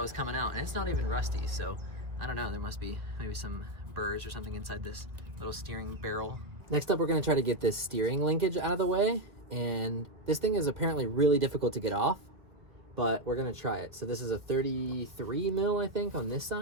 coming out, and it's not even rusty, so I don't know, there must be maybe some burrs or something inside this little steering barrel. Next up, we're gonna try to get this steering linkage out of the way, and this thing is apparently really difficult to get off, but we're gonna try it. So this is a 33 mil, I think, on this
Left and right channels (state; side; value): late; left; 2.0 ms